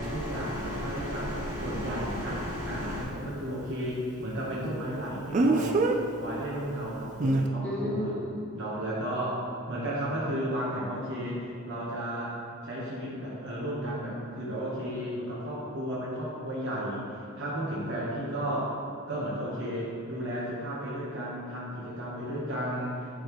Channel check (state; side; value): normal; both; correlation 0.43